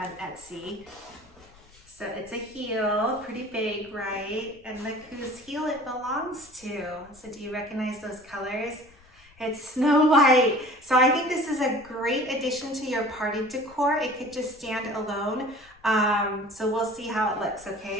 Etsy. So it's a heel, pretty big, right? And look whose heel it belongs to. So do you recognize those colors? It's Snow White. So I think this is a great addition to your party decor. It could just stand alone. So we'll see how it looks,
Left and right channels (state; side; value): noise; left; rumble, 27 dB below the sound